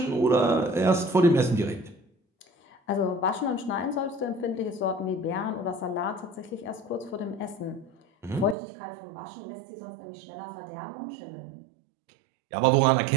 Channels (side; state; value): left; drops out; at 8.6 s